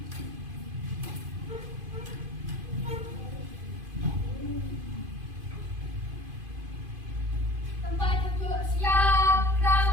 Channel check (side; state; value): left; late; 2.5 ms